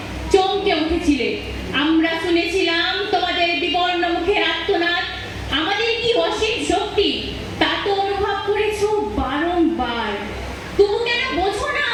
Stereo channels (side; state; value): both; identical; correlation 1.00